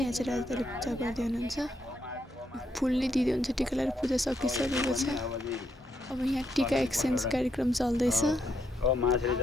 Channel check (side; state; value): both; normal; correlation 0.77